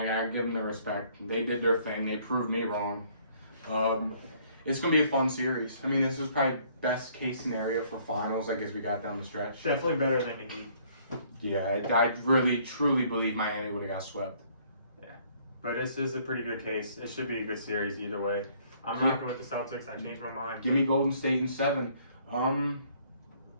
gotta give them the respect. They did their thing. They proved me wrong. It's gonna be a fun series. I mean, this is probably best case scenario for finals. I guess we got down the stretch. Definitely better than the Heat. Yeah, I really truly believe Miami would have got swept. Yeah, but this is a pretty good case. It should be a good series either way. I'm Yeah. rocking with the Celtics. I changed my mind. Give me Golden State in 7.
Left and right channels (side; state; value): both; inverted; correlation -0.62